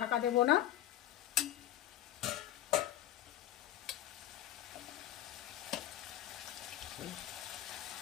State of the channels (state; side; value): quieter; right; 12.9 dB